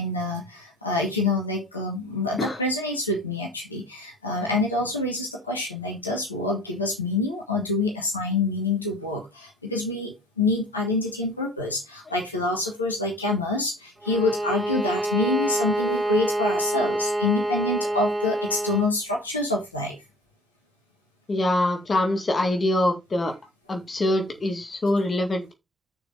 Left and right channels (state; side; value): normal; both; correlation 0.45